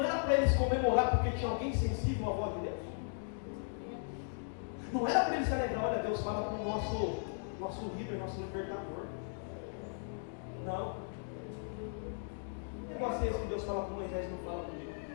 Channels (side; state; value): right; silent; digital silence